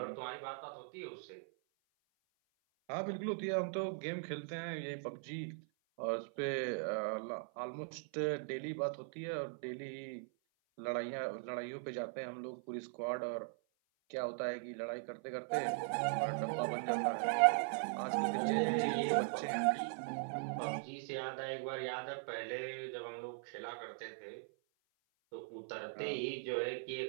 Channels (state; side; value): silent; left; 51 dB below the other